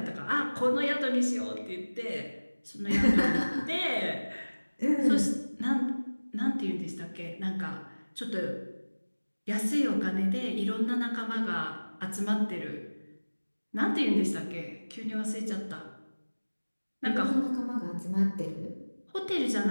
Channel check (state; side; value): inverted; both; correlation -1.00